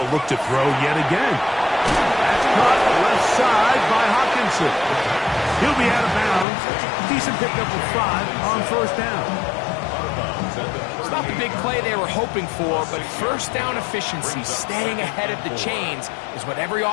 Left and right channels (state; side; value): drops out; right; at 6.5 s